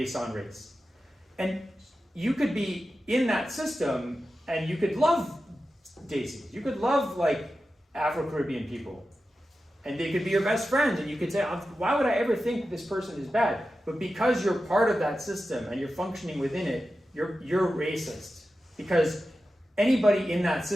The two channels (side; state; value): both; normal; correlation 0.92